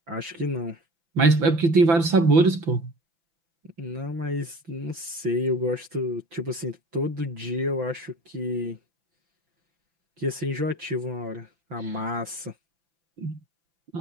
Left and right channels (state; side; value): late; left; 6.0 ms